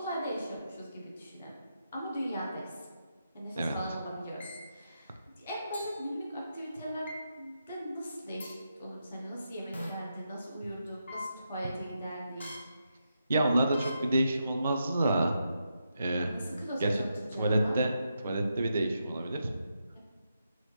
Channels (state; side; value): inverted; both; correlation -0.84